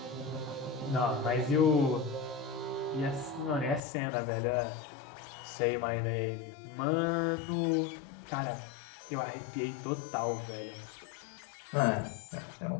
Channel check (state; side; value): drops out; right; at 3.8 s